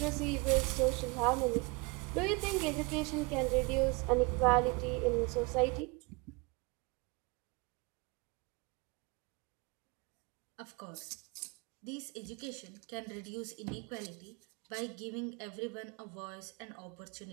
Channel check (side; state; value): left; quieter; 27.9 dB